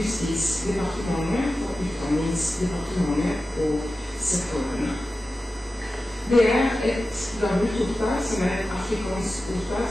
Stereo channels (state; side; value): normal; both; correlation 0.94